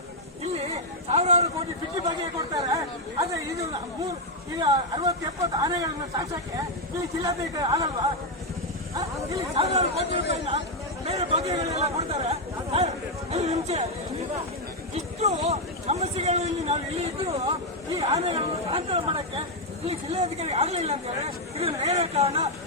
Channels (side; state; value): both; normal; correlation 0.02